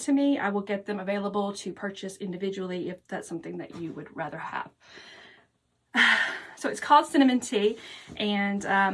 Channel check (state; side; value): identical; both; correlation 1.00